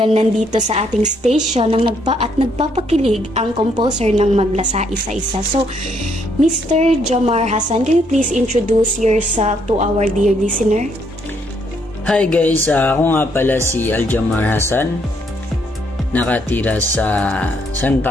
nandito sa ating station nagpapakilig ang composer ng Maglasa Isa-Isa. So, Mr. Jomar Hassan, can you please introduce yourself to our dear listener? Hi guys, ako nga pala si Aljamar Hassan. Nakatira sa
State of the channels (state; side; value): normal; both; correlation 0.71